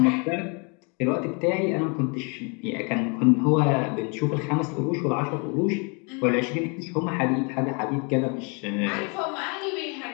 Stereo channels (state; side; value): quieter; right; 34.0 dB